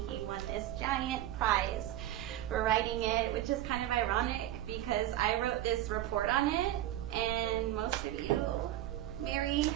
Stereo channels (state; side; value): quieter; left; 13.4 dB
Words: he won this giant prize for writing it, which is kind of ironic because I wrote this report on it, and most of you, Mary